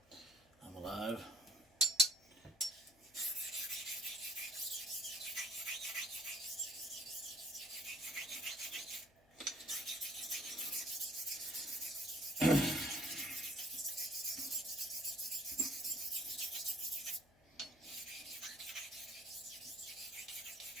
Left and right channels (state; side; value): noise; left; hum, 30 dB below the sound